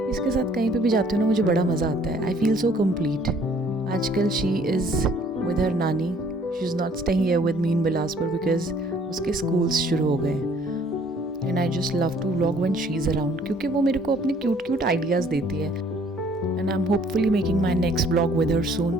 इसके साथ कहीं पे भी जाती हूँ ना, मुझे बड़ा मज़ा आता है। I feel so complete. आजकल शी इज़ विद हर नानी, she is not staying here with me in Bilaspur because उसके स्कूल्स शुरू हो गए। And I just love to vlog when she is around, क्योंकि वो मेरे को अपने क्यूट क्यूट आइडियाज़ देती है। And I'm hopefully making my next vlog with her soon.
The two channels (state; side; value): normal; both; correlation 0.59